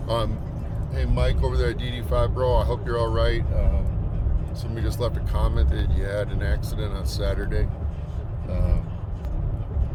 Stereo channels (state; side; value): identical; both; correlation 1.00